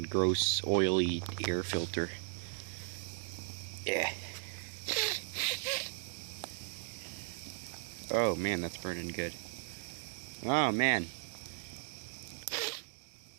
gross, oily air filter. Yeah. Oh man, that's burning good. Oh man.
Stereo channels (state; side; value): silent; left; digital silence